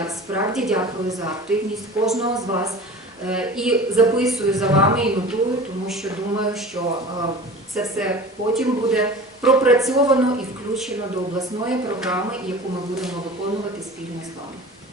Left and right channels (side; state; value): both; normal; correlation 0.39